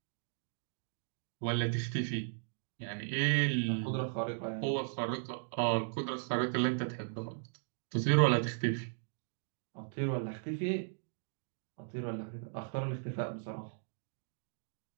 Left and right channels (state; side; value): silent; left; digital silence